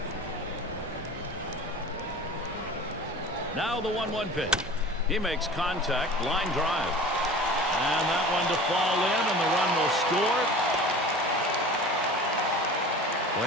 Now the 1-1 pitch. He makes contact, line drive. And that one to fall in, and the run will score.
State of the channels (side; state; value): both; normal; correlation 0.39